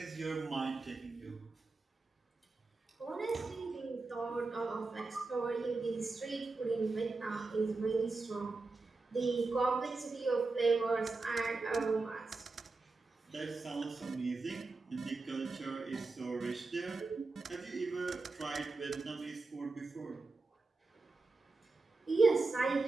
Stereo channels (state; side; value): quieter; left; 3.7 dB